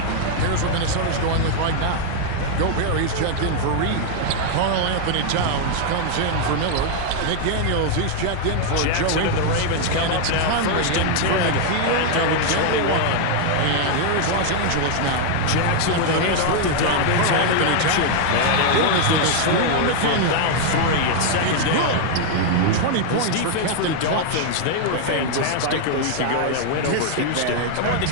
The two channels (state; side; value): different; both; correlation 0.00